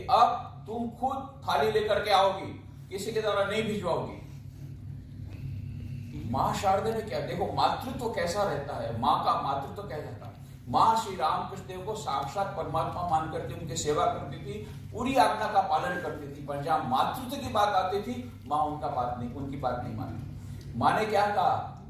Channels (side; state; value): both; identical; correlation 1.00